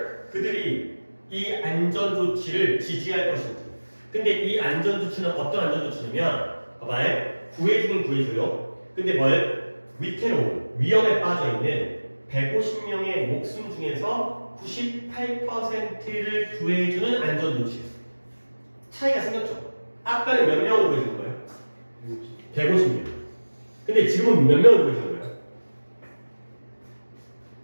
그들이 이 안전조치를 지지할 것인지. 근데 이 안전조치는 어떤 안전조치냐면 봐봐요. 구해주긴 구해줘요. 근데 뭘? 위태로운 위험에 빠져있는 150명의 목숨 중에서 98%를 구해주는 안전조치. 차이가 생겼죠. 아까는 몇 명을 구해주는 거예요? 150명. 근데 지금은 몇 명을 구해주는 거예요?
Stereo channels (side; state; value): both; inverted; correlation -1.00